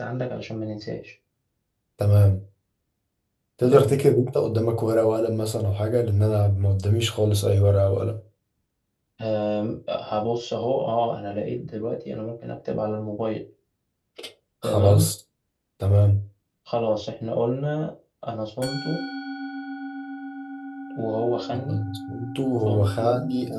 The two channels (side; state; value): both; identical; correlation 1.00